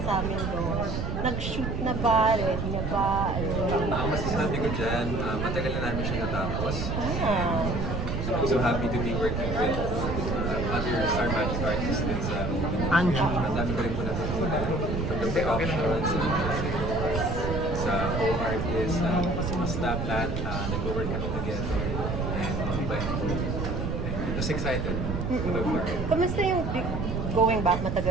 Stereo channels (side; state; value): right; noise; rumble, 2 dB below the sound